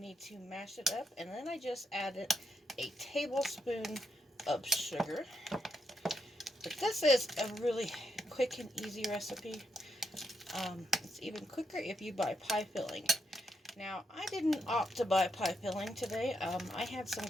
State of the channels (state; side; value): normal; both; correlation 0.80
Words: to mash it up, and then I just added a tablespoon of sugar. But this is a really quick and easy recipe. It's even quicker if you buy pie filling. Now, I didn't opt to buy pie filling today. I had some